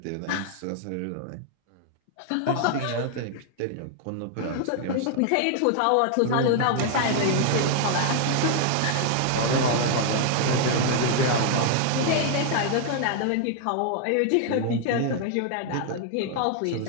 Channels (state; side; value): different; both; correlation 0.00